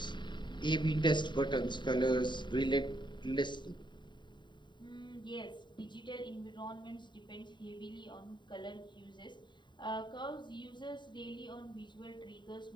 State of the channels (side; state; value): right; late; 0.22 ms